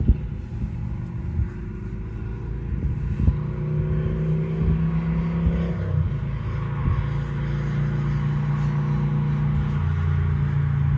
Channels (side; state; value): both; identical; correlation 1.00